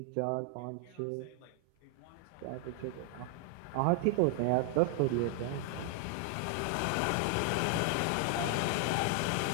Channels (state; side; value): different; both; correlation 0.00